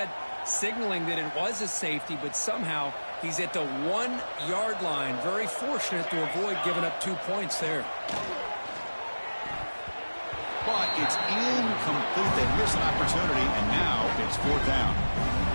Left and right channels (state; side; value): inverted; both; correlation -1.00